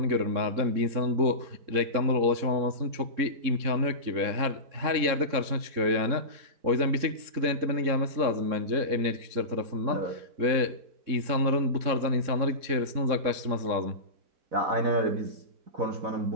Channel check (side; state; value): left; late; 3.7 ms